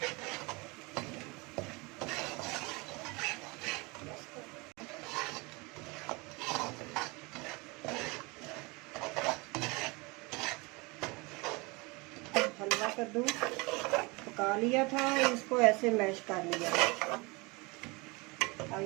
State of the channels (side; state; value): left; quieter; 26.4 dB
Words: हलवा कद्दू पका लिया था, इसको ऐसे मैश कर लिया।